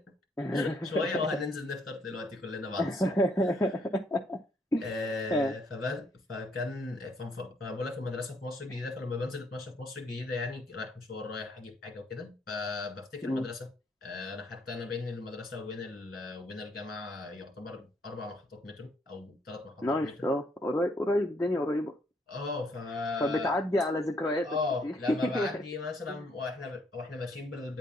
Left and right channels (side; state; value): both; normal; correlation 0.70